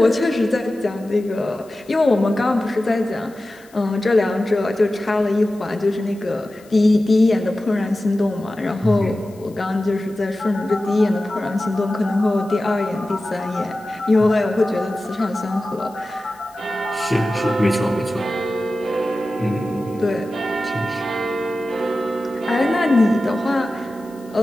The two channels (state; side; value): noise; left; hiss, 28 dB below the sound